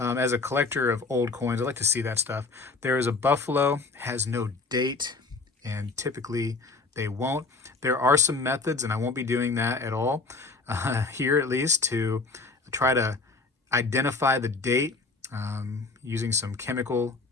a collector of old coins, I like to see that stuff. There is a buffalo, has no date, and typically they won't. There are some methods, and I won't be doing that at all here, at least, to try to identify the date using some chemical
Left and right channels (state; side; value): quieter; right; 3.9 dB